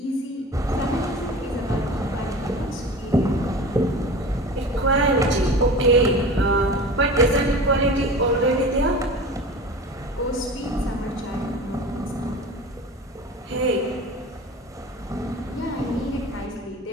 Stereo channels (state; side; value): normal; both; correlation 0.35